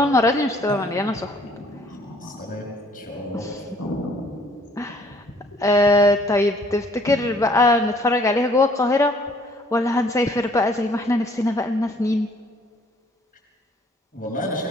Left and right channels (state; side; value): normal; both; correlation 0.60